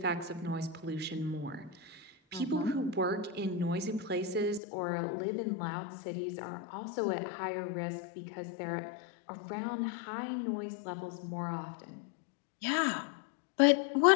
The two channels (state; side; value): drops out; right; at 4.6 s